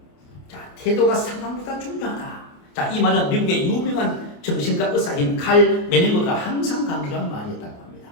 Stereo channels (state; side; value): late; right; 28 ms